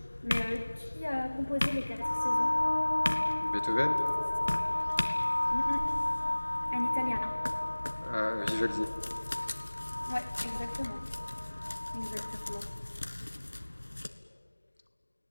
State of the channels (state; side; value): inverted; both; correlation -1.00